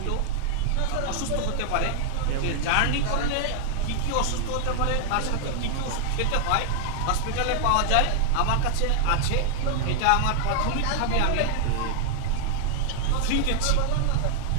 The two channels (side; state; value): both; different; correlation 0.00